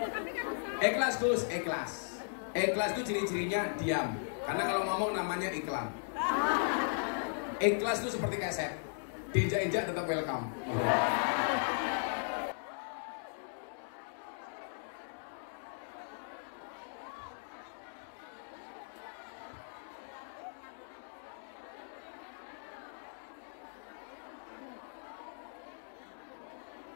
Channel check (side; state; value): right; silent; digital silence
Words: Ikhlas Gus, ikhlas. Ikhlas itu ciri-cirinya diam. Karena kalau ngomong namanya iklan. Ikhlas itu seperti keset. Diinjak-injak tetap welcome.